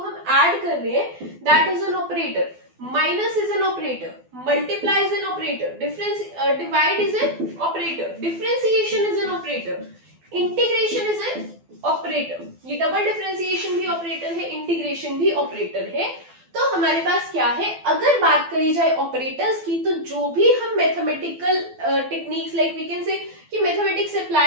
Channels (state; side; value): late; left; 12 ms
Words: ऐड कर रहे हैं, that is an operator. Minus is an operator, multiply is an operator, difference divide is an operator, differentiation is an operator, integration is an operator. ये double differentiation भी operator है, इंटीग्रेशन भी ऑपरेटर है. तो हमारे पास क्या है, अगर बात करी जाए ऑपरेटर्स की, तो जो भी हम mathematical techniques like we can say कि मैथमेटिक्स